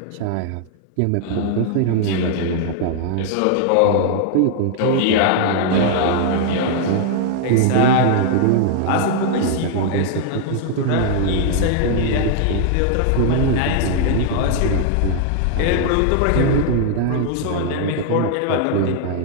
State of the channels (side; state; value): both; different; correlation 0.00